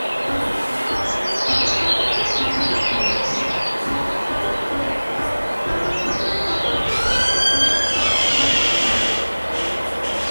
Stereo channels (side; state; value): both; inverted; correlation -1.00